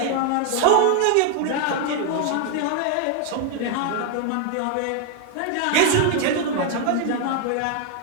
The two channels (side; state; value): both; different; correlation 0.00